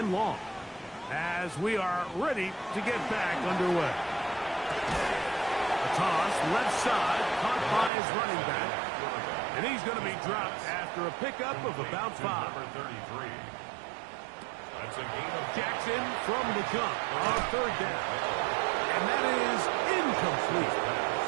long. As we are ready to get back underway. A toss, left side, caught by his running back. And he's going to be dropped after a pickup of about 5. Number 33. That's a gain of Jackson from the jump on third down. And that is incomplete.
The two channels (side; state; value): left; drops out; at 7.9 s